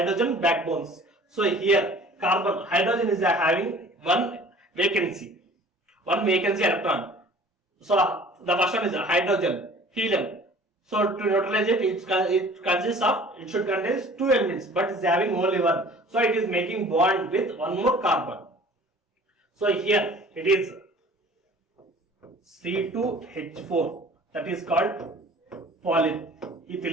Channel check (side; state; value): both; normal; correlation 0.48